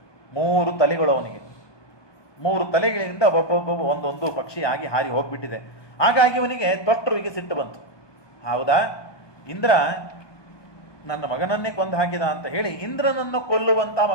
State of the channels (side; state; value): right; late; 1.2 ms